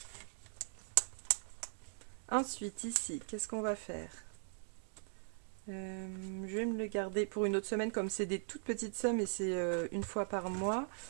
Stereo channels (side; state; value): left; silent; digital silence